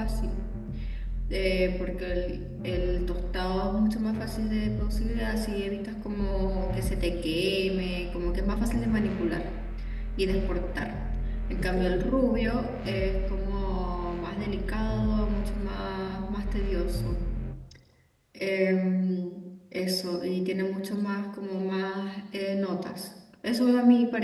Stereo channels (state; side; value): identical; both; correlation 1.00